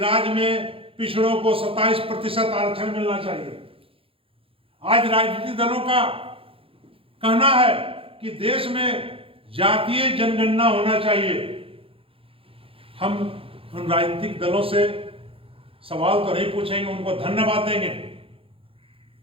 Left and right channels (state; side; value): late; left; 0.27 ms